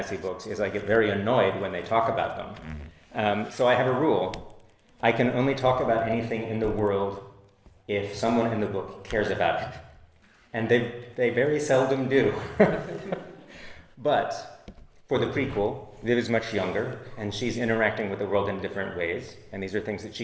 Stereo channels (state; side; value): identical; both; correlation 1.00